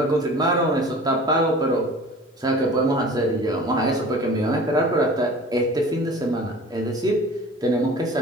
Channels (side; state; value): both; normal; correlation 0.42